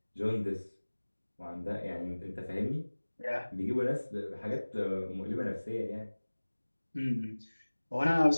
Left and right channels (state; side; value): inverted; both; correlation -1.00